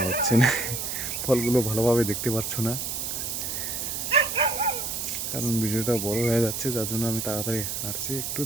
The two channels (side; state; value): right; noise; hiss, 3 dB below the sound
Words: হচ্ছে না, ফলগুলো ভালোভাবে দেখতে পারছো না, কারণ ভিডিওটা বড় হয়ে যাচ্ছে, যার জন্য আমি তাড়াতাড়ি হাঁটছি, একটু